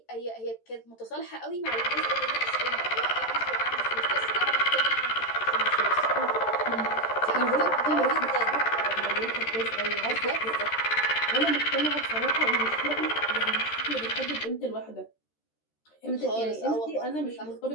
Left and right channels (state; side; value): late; right; 13 ms